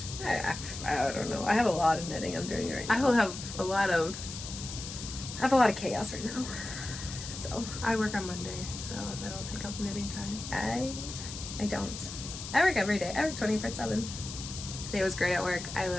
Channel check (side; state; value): left; noise; hiss, 9 dB below the sound